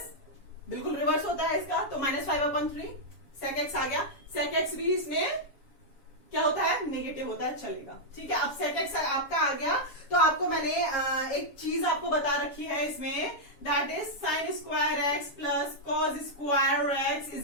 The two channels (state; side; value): late; right; 7.2 ms